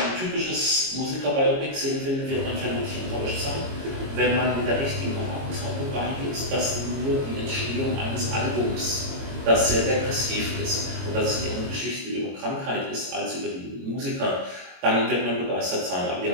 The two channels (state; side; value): late; left; 22 ms